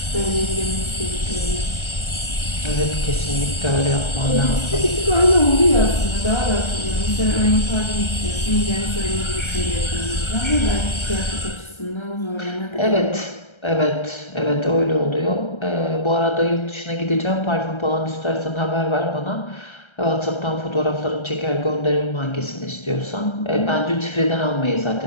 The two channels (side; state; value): right; late; 1.3 ms